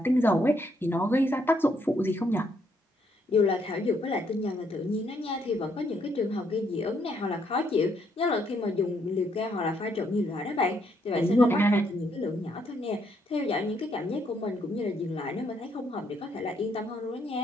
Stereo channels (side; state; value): both; normal; correlation 0.72